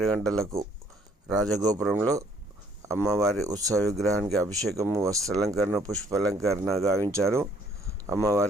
గంటలకు రాజగోపురంలో అమ్మవారి ఉత్సవ విగ్రహానికి అభిషేకము, వస్త్రాలంకరణ, పుష్పాలంకరణ గావించారు.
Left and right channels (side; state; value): both; normal; correlation 0.62